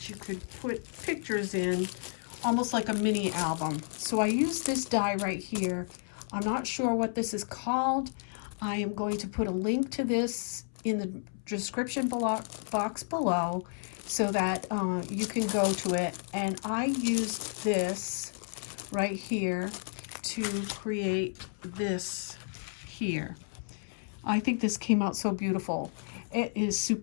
you could put pictures in, almost like a mini album. So I used this die right here. I'm not sure what this is called. I am going to put a link to this in the description box below so that you can go to it. And I used this right here to create this here. I think this came out so beautiful. It is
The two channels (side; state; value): right; silent; 57 dB below the other